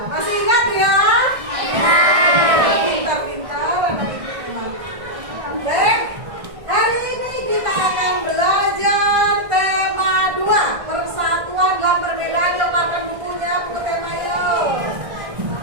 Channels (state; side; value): late; left; 1.6 ms